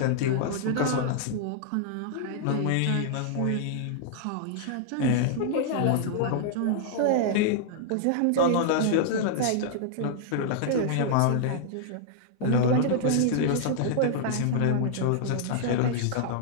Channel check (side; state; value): both; different; correlation -0.01